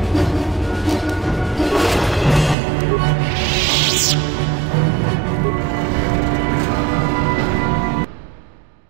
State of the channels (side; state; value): left; drops out; at 2.6 s